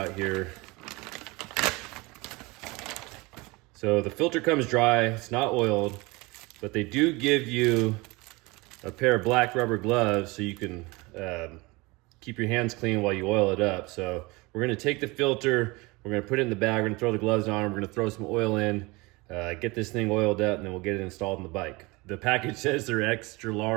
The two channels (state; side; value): quieter; left; 24.3 dB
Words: here. So the filter comes dry, it's not oiled, but they do give you a pair of black rubber gloves so you can keep your hands clean while you oil it up. So we're gonna take the filter, we're gonna put it in the bag, we're gonna throw the gloves on, we're gonna throw some oil in, get this thing oiled up, and then we'll get it installed on the bike. The package says they're extra